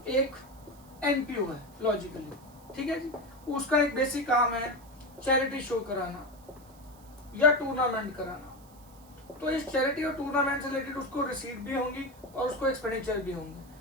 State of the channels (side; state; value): right; noise; hiss, 26 dB below the sound